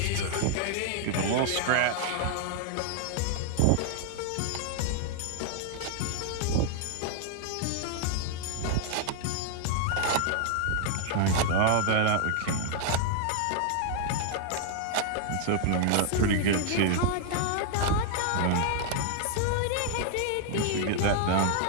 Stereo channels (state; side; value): different; both; correlation 0.00